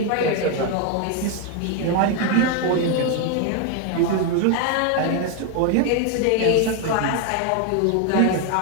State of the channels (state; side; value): different; both; correlation 0.01